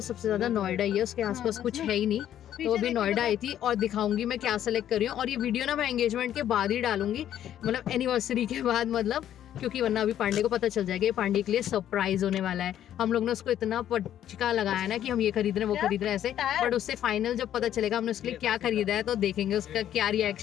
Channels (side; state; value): right; quieter; 11.0 dB